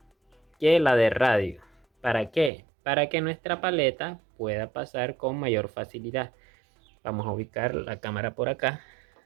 que la de radio. ¿Para qué? Para que nuestra paleta pueda pasar con mayor facilidad. Vamos a ubicar la cámara por acá.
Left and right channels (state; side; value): drops out; left; at 2.5 s